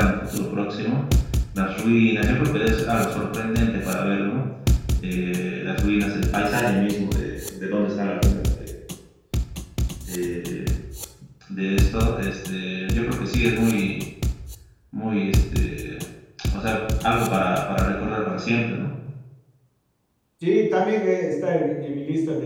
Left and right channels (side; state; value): both; identical; correlation 1.00